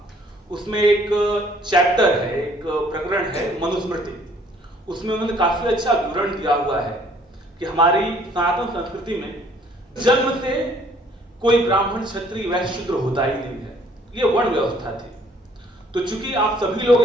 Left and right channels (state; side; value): normal; both; correlation 0.60